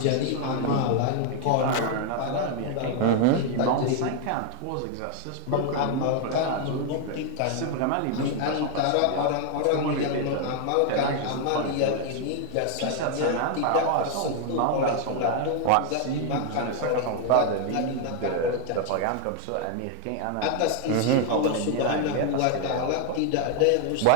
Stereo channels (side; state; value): both; different; correlation 0.00